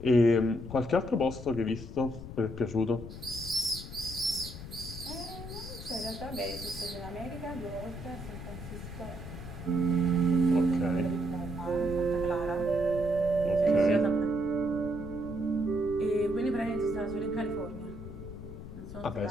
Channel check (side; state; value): left; noise; rumble, 11 dB below the sound